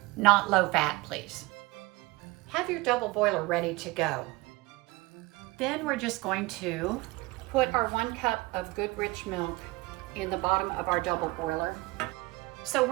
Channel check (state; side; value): quieter; left; 22.6 dB